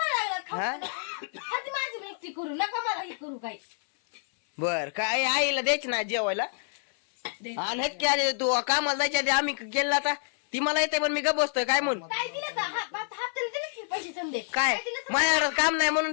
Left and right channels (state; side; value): silent; right; 59 dB below the other